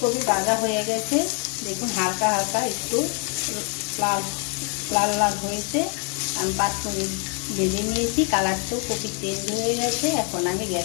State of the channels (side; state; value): right; quieter; 38.3 dB